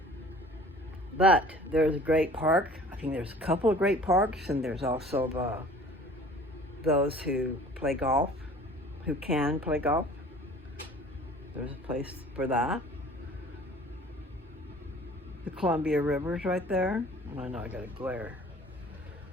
But there's a great park. I think there's a couple of great parks, and there's also those who play golf, who can play golf. There's a place for that. The Columbia River's right there. I know I got a glare.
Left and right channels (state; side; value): normal; both; correlation 0.47